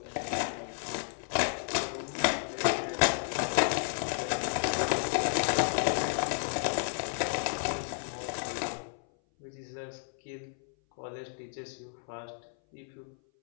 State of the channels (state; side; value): silent; right; 56 dB below the other